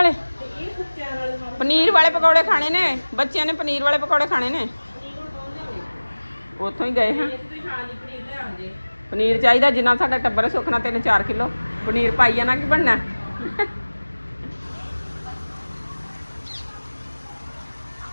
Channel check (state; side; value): inverted; both; correlation -1.00